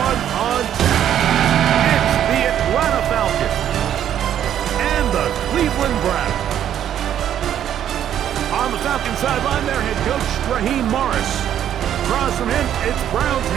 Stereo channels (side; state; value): left; quieter; 10.3 dB